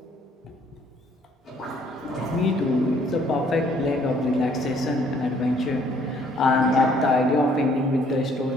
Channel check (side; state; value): both; normal; correlation 0.63